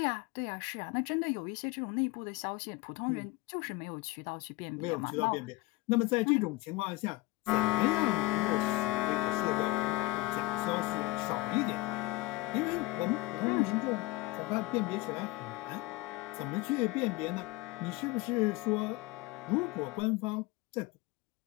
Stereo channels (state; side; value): quieter; right; 21.4 dB